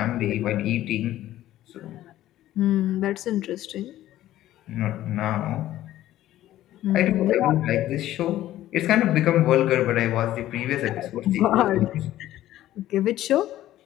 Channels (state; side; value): quieter; right; 13.9 dB